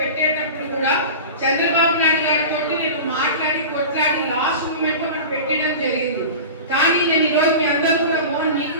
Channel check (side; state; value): both; inverted; correlation -0.32